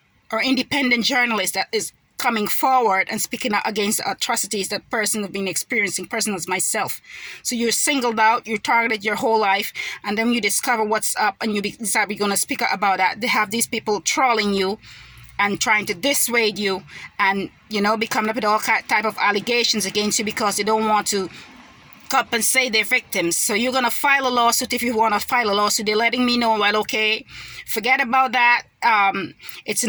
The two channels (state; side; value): identical; both; correlation 1.00